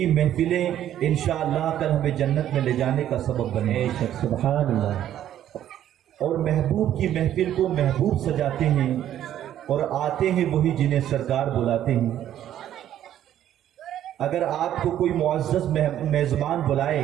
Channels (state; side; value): quieter; left; 11.4 dB